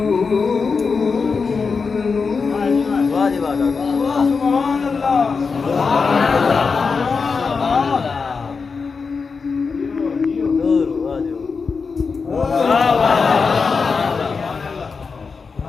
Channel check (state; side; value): quieter; right; 5.0 dB